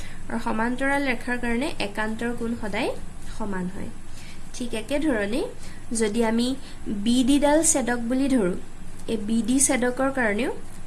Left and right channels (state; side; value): identical; both; correlation 1.00